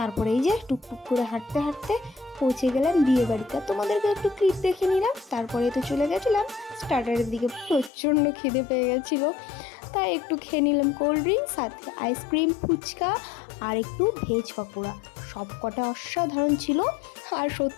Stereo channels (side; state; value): right; drops out; at 7.9 s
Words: এই যে টুকটুক করে হাঁটতে হাঁটতে পৌঁছে গেলাম বিয়ে বাড়িতে। তোমাদেরকে একটু ক্লিপ দেখে নিলাম, তারপরে তো চলে গেছিলাম স্টার্টারের দিকে। প্রচণ্ড খিদে পেয়ে গেছিলো, তাই একটু খেয়ে নিলাম কোল্ড ড্রিঙ্ক, সাথে আইসক্রিম, ফুচকা আর একটু ভেজ পকোড়া। সব কটা অসাধারণ ছিল। আর